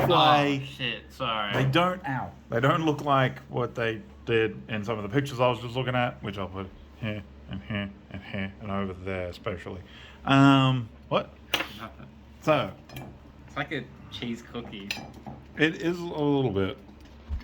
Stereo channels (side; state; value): both; identical; correlation 1.00